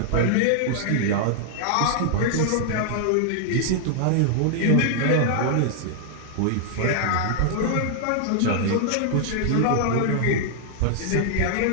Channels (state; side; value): different; both; correlation -0.01